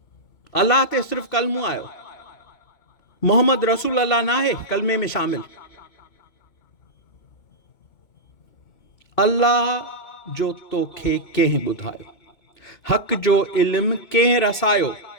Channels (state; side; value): late; right; 2.7 ms